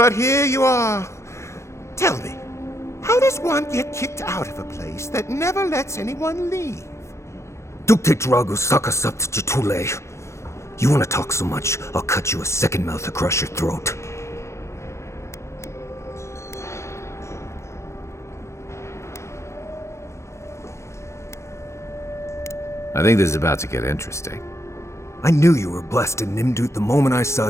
here you are. Tell me, how does one get kicked out of a place that never lets anyone leave? Dukte Drago Sakasapt Jitule. You want to talk so much, I'll cut you a second mouth across your throat. I think this is about to get interesting. I knew you were blessed in Nimdut the moment I saw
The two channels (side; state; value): right; late; 0.14 ms